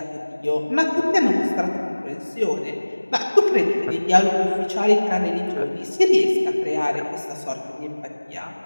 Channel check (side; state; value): both; inverted; correlation -1.00